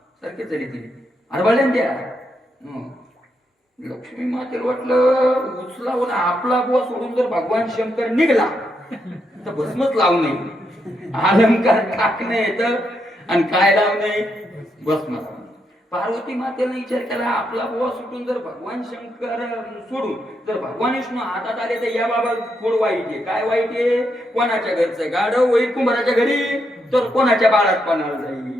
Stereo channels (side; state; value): both; normal; correlation 0.80